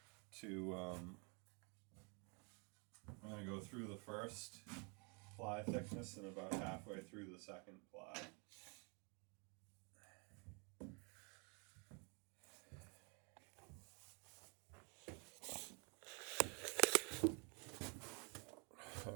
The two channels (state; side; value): quieter; left; 34.7 dB